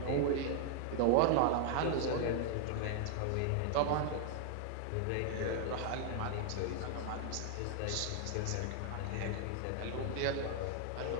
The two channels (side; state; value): both; different; correlation 0.00